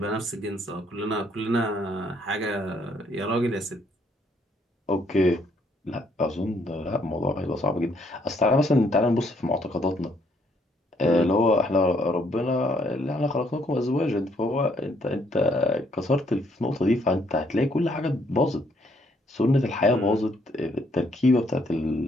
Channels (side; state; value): both; normal; correlation 0.69